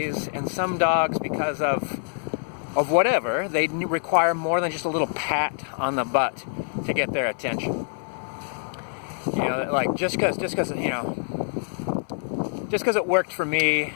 and some dogs, because of whatever, they require more than just a little pat on the butt to get their attention. You know, like just because it worked for me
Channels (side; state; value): right; silent; 58 dB below the other